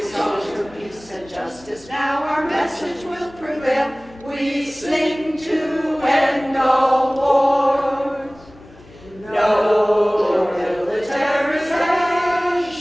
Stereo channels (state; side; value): noise; left; hum, 25 dB below the sound